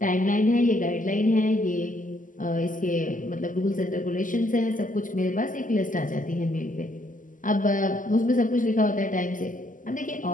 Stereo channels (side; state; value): right; late; 0.38 ms